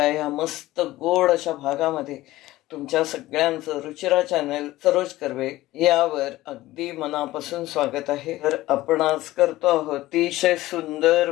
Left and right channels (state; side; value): quieter; right; 16.9 dB